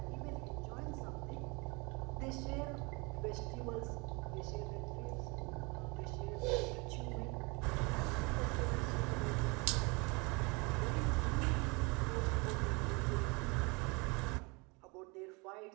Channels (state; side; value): quieter; left; 28.4 dB